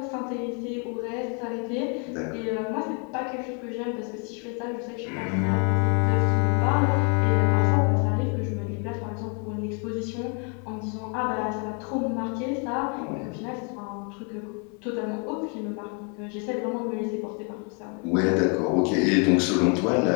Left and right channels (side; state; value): right; quieter; 37.8 dB